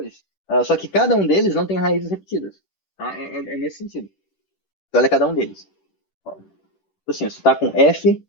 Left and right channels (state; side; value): late; right; 10 ms